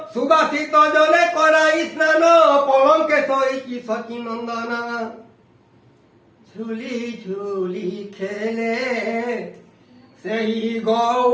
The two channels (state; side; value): identical; both; correlation 1.00